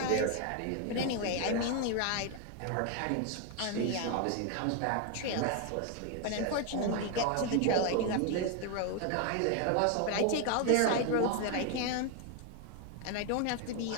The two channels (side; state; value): both; different; correlation 0.01